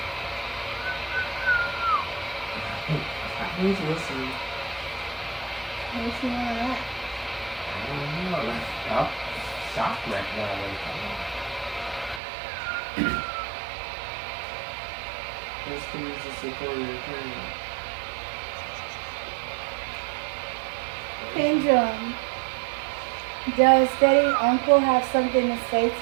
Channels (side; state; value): left; drops out; at 12.2 s